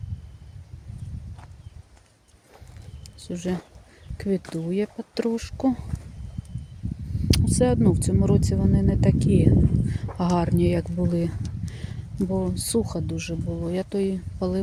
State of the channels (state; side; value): identical; both; correlation 1.00